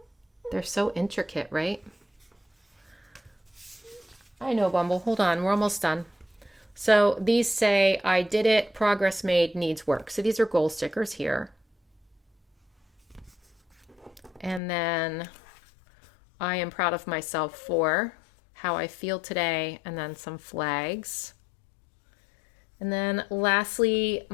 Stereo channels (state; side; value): drops out; right; at 14.6 s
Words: they're so intricate, right? I know, Bumble. Hold on. We're almost done. So these say, I did it, progress made, needs work. So these are goal stickers here. And then I am proud of myself for how I feel today, and then some flags. And then lastly,